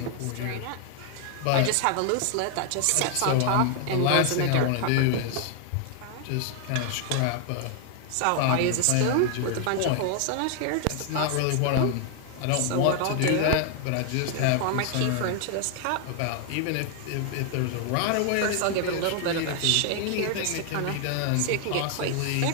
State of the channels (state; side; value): different; both; correlation 0.00